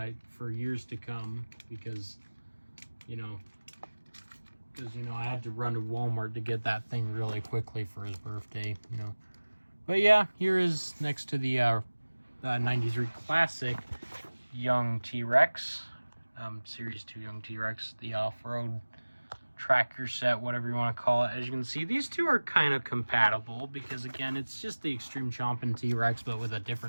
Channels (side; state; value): both; inverted; correlation -1.00